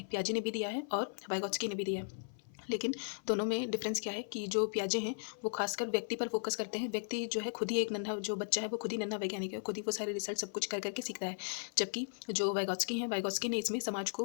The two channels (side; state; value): right; silent; 53 dB below the other